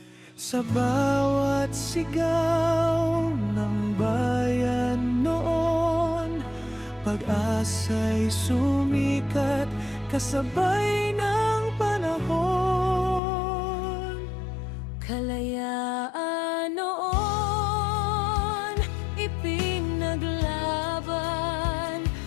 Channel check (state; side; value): drops out; right; at 13.2 s